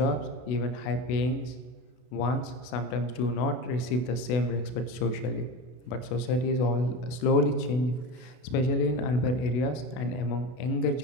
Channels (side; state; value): right; late; 32 ms